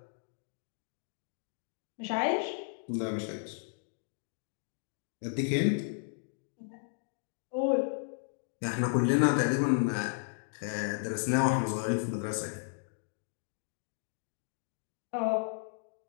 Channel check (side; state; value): right; silent; digital silence